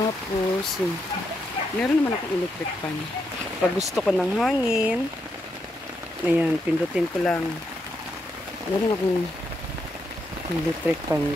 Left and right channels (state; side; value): normal; both; correlation 0.81